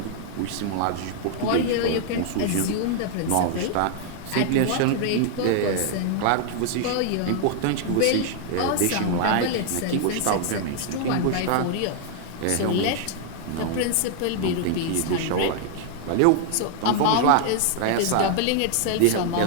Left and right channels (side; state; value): both; different; correlation 0.00